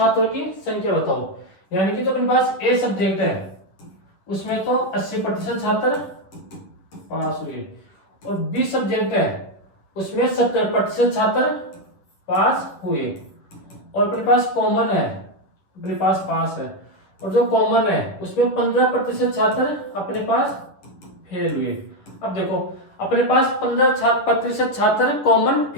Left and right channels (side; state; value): right; late; 10 ms